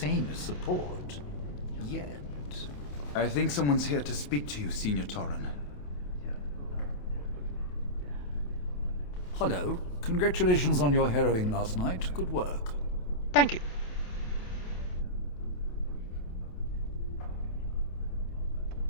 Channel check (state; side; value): late; right; 28 ms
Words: as support. Yet. I think someone's here to speak to you, Senior Torren. Hello. Congratulations on your harrowing last night. Good work. Thank you.